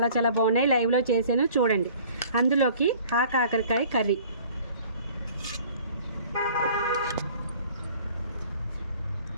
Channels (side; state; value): both; inverted; correlation -0.50